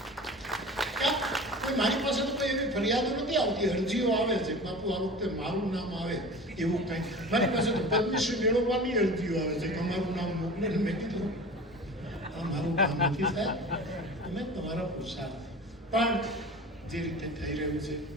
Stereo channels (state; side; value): normal; both; correlation 0.36